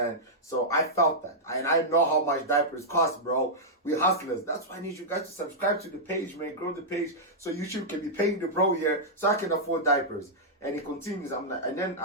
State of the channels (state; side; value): normal; both; correlation -0.08